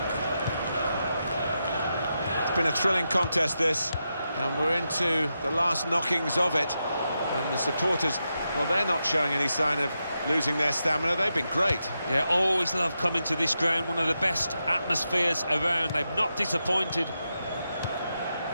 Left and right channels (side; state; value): both; inverted; correlation -0.87